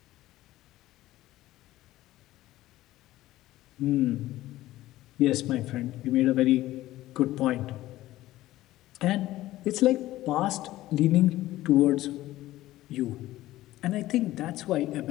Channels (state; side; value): quieter; right; 15.8 dB